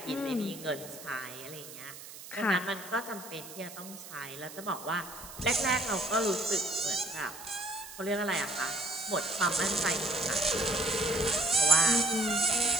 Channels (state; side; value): noise; right; hiss, 14 dB below the sound